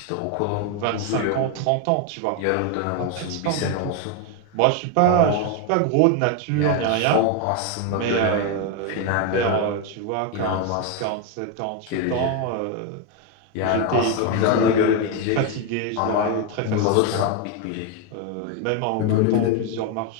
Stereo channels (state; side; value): different; both; correlation 0.02